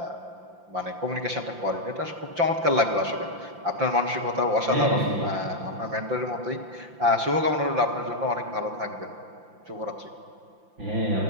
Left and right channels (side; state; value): left; late; 5.8 ms